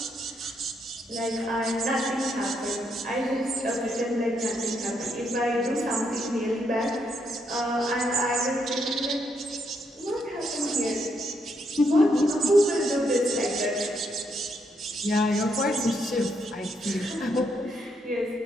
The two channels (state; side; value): normal; both; correlation 0.77